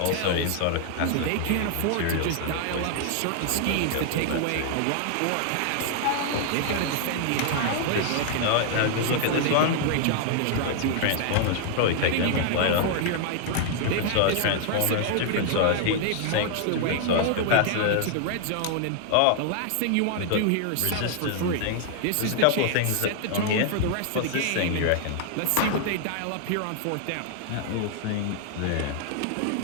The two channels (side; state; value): both; different; correlation 0.00